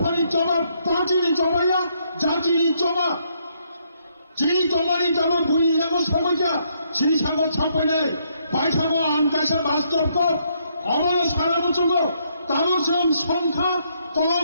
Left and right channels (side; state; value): both; inverted; correlation -0.73